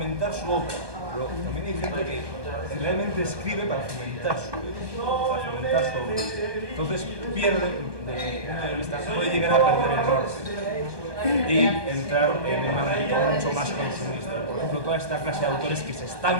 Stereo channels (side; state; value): left; late; 1.2 ms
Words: su obra, pero también hay gente que realmente escribe para fomentar su obra. Entonces pierde, desde mi punto de vista, puede llegar a perder el norte y entrar en una dinámica mucho más consumista. Por ejemplo, toda esta clase de autores que se